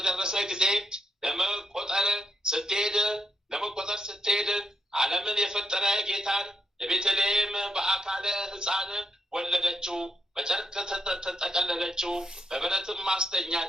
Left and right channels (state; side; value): normal; both; correlation 0.78